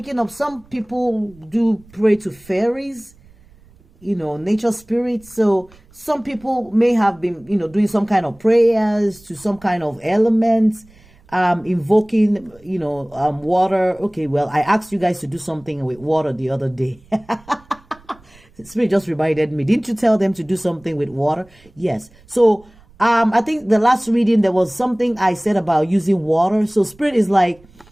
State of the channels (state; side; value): noise; right; rumble, 27 dB below the sound